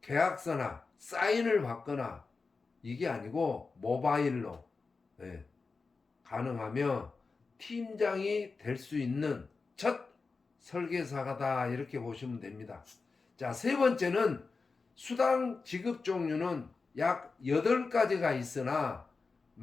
계약서나 사인을 받거나 이게 아니고 모바일로 가능하며 팀장이 될 수 있는 첫 설계사가다 이렇게 보시면 됩니다. 자, 세 번째는 수당 지급 종류는 약 8가지가 있으나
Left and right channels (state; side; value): quieter; right; 4.3 dB